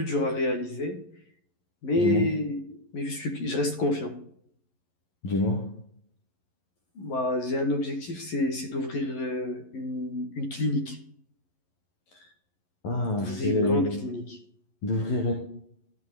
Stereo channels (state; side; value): late; right; 11 ms